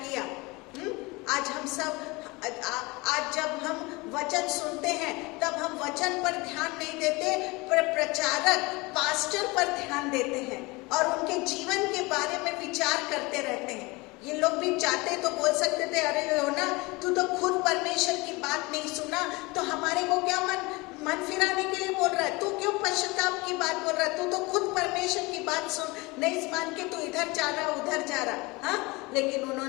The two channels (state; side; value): quieter; right; 24.4 dB